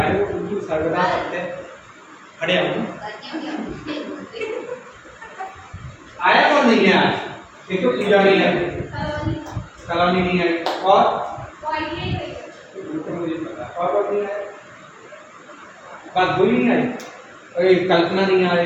उनकी सर्वदा सत्य खड़े हो। आया कौन नहीं है आज? एक तो पूजा नहीं है, कॉलोनी नहीं आई, और मुझे पता और कौन नहीं आया? बात बोली नहीं आई, अरे कल्पना नहीं आ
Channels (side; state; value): both; identical; correlation 1.00